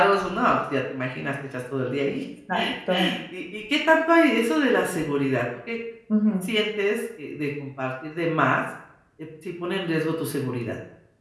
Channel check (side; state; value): both; identical; correlation 1.00